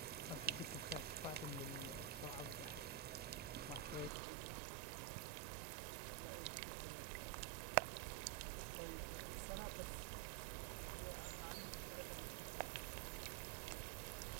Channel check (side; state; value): left; drops out; at 4.1 s